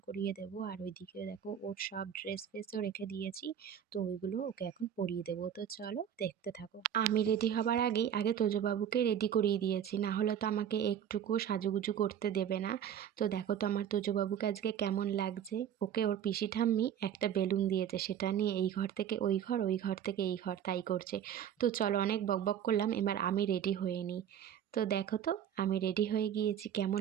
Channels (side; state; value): left; quieter; 9.4 dB